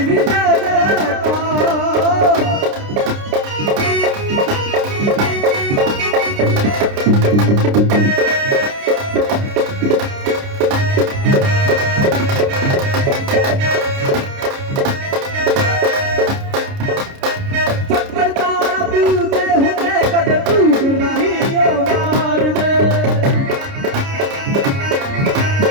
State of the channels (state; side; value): late; left; 29 ms